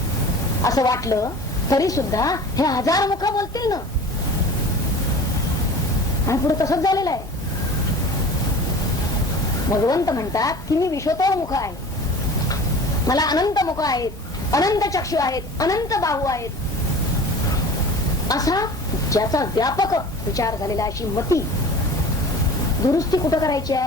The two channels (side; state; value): both; normal; correlation 0.40